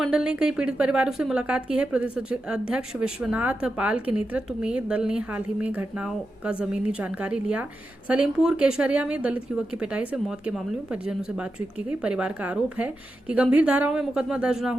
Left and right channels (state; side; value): normal; both; correlation 0.89